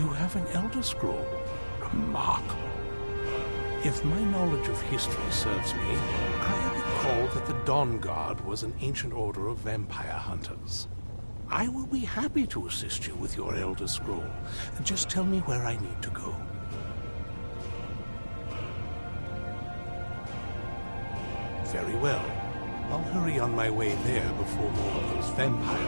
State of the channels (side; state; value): both; inverted; correlation -1.00